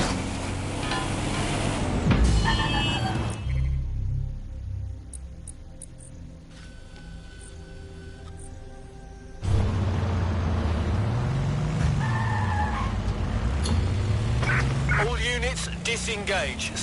All units, disengage.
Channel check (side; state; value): both; identical; correlation 1.00